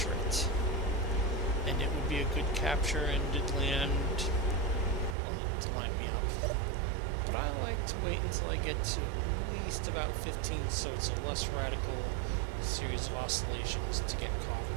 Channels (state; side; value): drops out; left; at 5.2 s